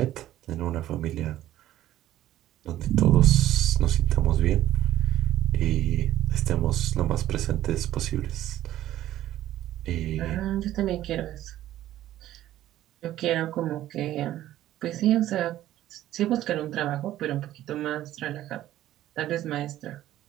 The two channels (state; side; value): quieter; left; 13.7 dB